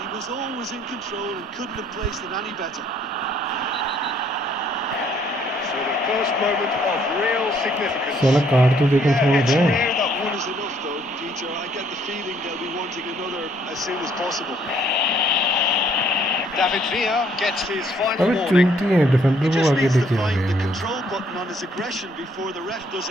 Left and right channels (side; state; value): both; normal; correlation 0.65